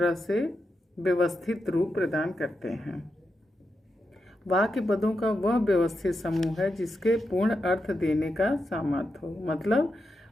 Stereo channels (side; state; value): both; normal; correlation 0.87